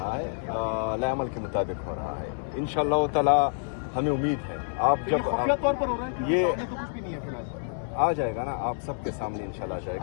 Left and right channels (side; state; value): right; silent; digital silence